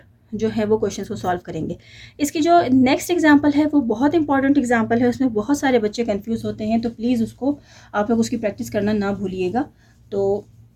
जो है वो क्वेश्चंस को सॉल्व करेंगे। इसकी जो नेक्स्ट एग्जांपल है वो बहुत इंपॉर्टेंट एग्जांपल है, उसमें बहुत सारे बच्चे कंफ्यूज होते हैं, तो प्लीज़ उसको आप लोग उसकी प्रैक्टिस करना ना भूलिएगा। तो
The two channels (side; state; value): both; identical; correlation 1.00